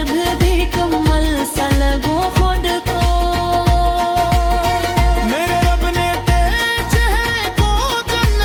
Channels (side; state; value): both; identical; correlation 1.00